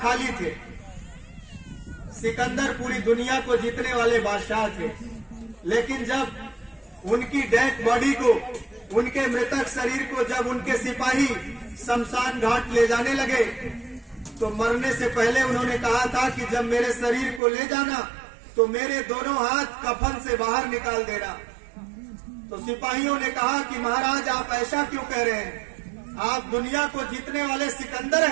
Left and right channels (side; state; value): left; drops out; at 17.4 s